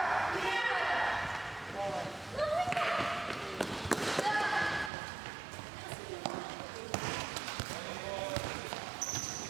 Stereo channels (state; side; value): drops out; left; at 4.9 s